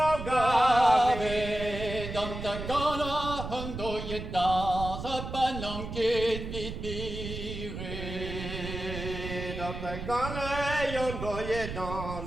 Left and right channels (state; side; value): noise; right; rumble, 7 dB below the sound